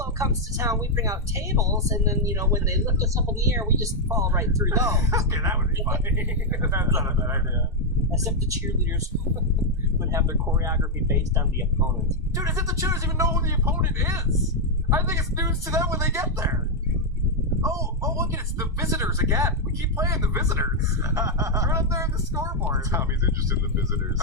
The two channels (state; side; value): normal; both; correlation -0.01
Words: comes to town, we bring out tables, and then, when they lift us up in the air, we just fall right through those. Okay, that would be funny. That's not a bad idea. As if the cheerleaders would have their choreography based on the opponent. Dude, as if the cheerleaders even know who the opponent is. I think it's news to them when they get there. Oh, look, it's the visitors again. We keep playing the visitors. They're up there on the scoreboard. Tommy's interested in the visitors.